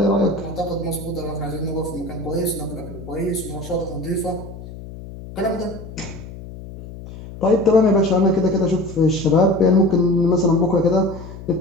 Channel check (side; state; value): left; noise; hum, 13 dB below the sound